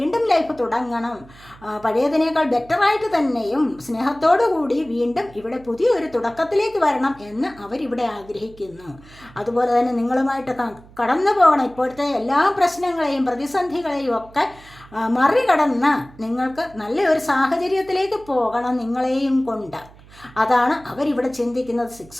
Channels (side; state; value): right; noise; hum, 23 dB below the sound